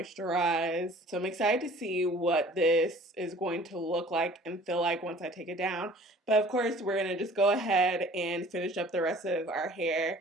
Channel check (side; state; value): both; normal; correlation 0.49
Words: So I'm excited to see what this is going to look like and feel like once I take it down. But of course, we're going to just go ahead and finish up the rest of our hair,